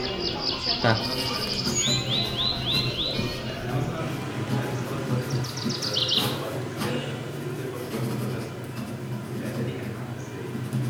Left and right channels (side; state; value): both; identical; correlation 1.00